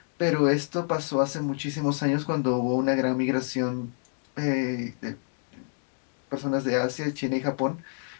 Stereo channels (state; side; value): silent; right; 59 dB below the other